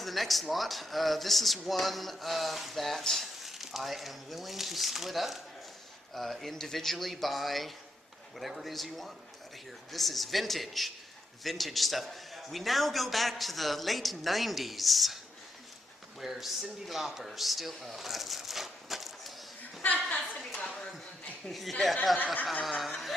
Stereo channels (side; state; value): both; normal; correlation 0.80